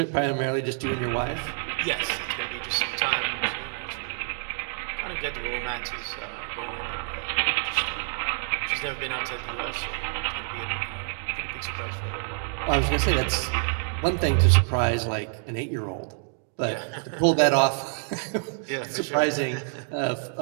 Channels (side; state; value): left; silent; 60 dB below the other